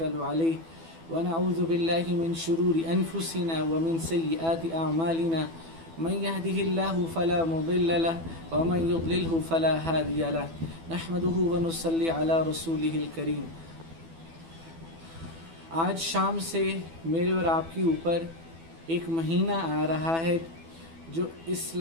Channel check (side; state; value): left; late; 12 ms